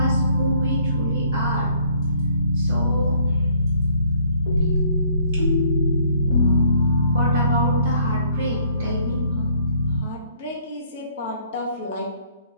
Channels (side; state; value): both; inverted; correlation -0.63